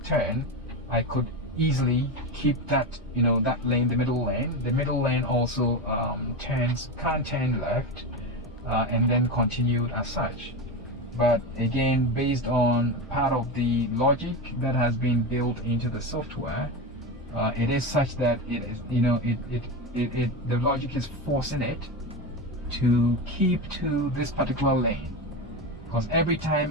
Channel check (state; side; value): normal; both; correlation 0.18